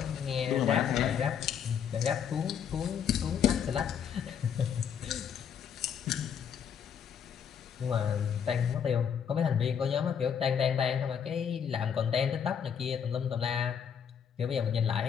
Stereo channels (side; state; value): right; quieter; 7.9 dB